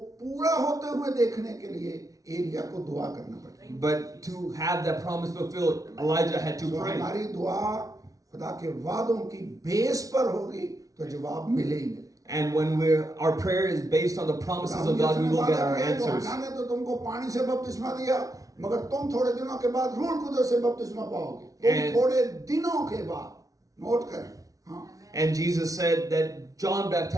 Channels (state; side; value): late; left; 0.17 ms